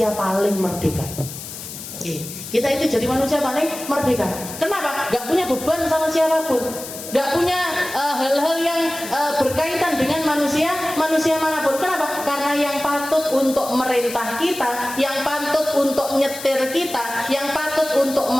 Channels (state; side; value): noise; left; hiss, 11 dB below the sound